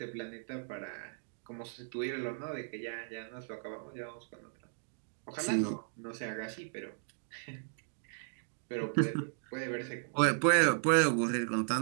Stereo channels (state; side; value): silent; left; digital silence